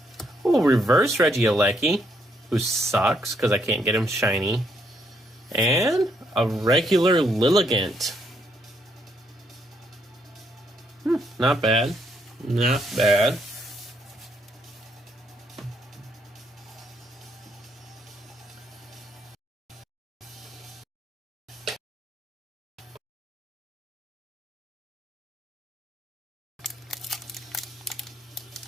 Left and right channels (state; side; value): normal; both; correlation 0.73